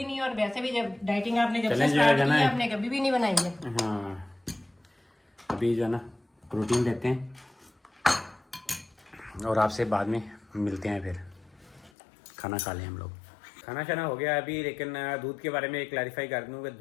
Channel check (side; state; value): right; drops out; at 11.9 s